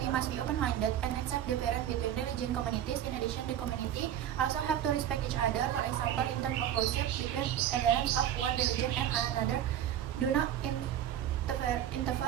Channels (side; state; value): left; quieter; 10.8 dB